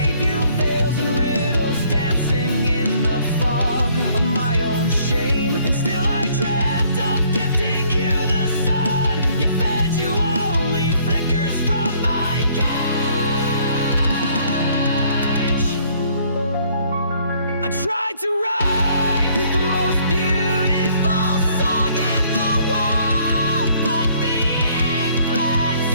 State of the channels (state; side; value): inverted; both; correlation -0.63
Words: you veils and riddles, dancing in the fog of my own shame. And still I dreamt of gifting you the sun. You fed you only flickers from my cage. I tried to write the most beautiful song in the world, but the ink bled